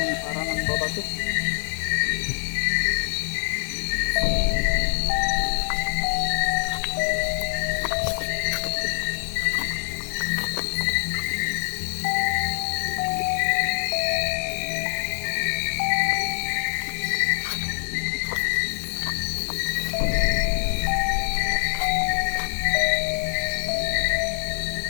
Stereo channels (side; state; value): right; silent; digital silence